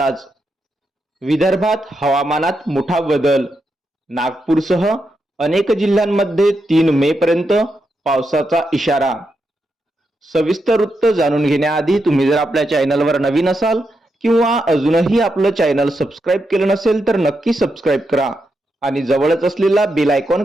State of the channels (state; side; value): normal; both; correlation 0.84